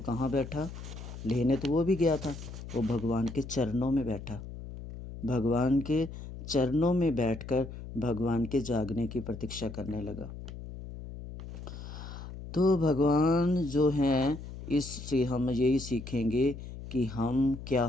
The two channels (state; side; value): noise; left; hum, 11 dB below the sound